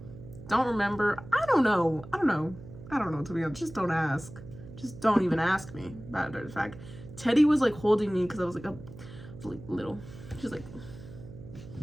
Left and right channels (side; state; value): right; noise; hum, 15 dB below the sound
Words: Don't remember. I don't know, to be honest. Just don't ask. Just don't even ask me about it. In fact, Teddy was like holding me because I was like little. She's like,